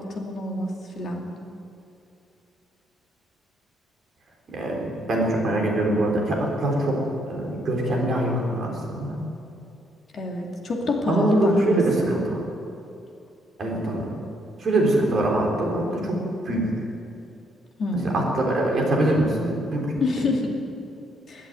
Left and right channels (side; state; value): both; normal; correlation 0.71